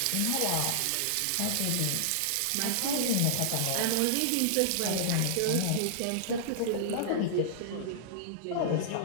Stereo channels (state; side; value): different; both; correlation -0.02